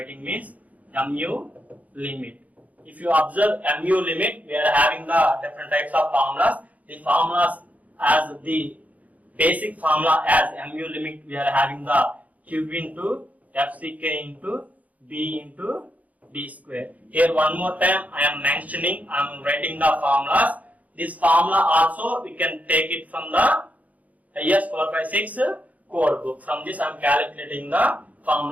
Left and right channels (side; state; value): left; late; 0.073 ms